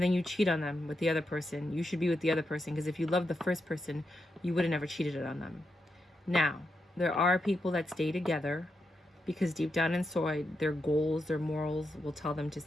then you cheat on them with the other person. You should be with the other person, because if you love the first person, you would have never cheated on them. Now, there are people that stay together because deep down inside, their goals, their morals will tell them to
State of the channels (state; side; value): normal; both; correlation 0.85